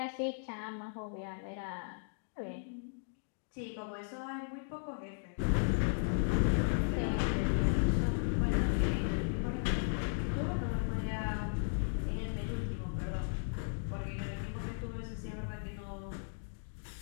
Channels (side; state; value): right; silent; digital silence